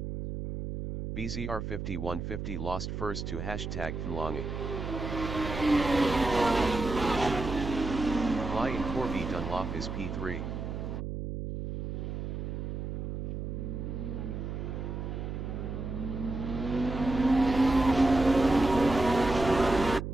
BZR 5150 lost first to hashtag Flangy. Fly in Corby Dunlop is P3.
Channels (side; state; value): right; noise; hum, 5 dB below the sound